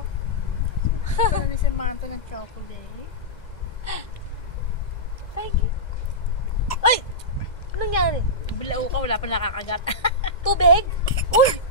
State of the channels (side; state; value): right; late; 2.0 ms